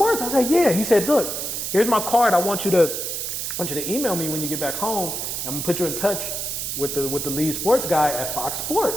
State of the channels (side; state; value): right; noise; hiss, 3 dB below the sound